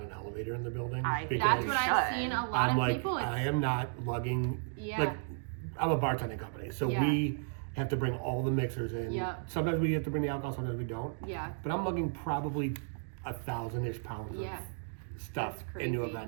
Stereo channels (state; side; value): silent; left; digital silence